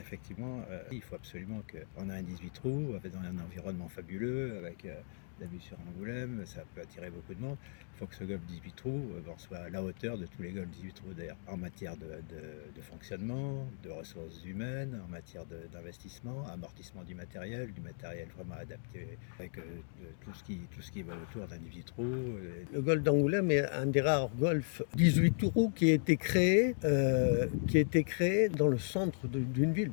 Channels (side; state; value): right; silent; digital silence